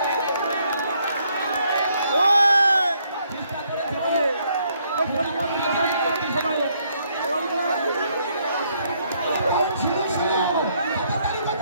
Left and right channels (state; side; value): inverted; both; correlation -0.70